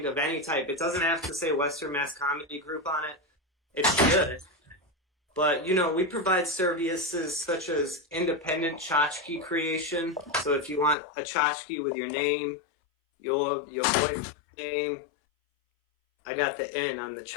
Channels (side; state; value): right; drops out; at 11.0 s